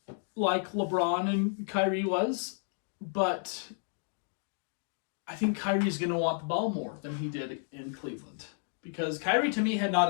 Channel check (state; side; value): silent; right; digital silence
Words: like LeBron and Kyrie was, but I think Kyrie's going to want the ball more than he did in Cleveland. Because Kyrie, to me, had